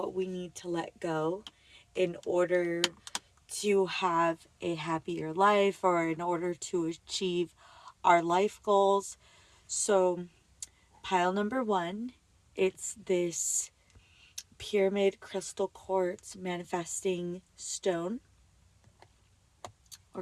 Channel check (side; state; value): both; identical; correlation 1.00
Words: we need to let go in order to have a happier life or in order to achieve our life goals. So pile number one, it's this pyramid crystal quartz manifesting stone or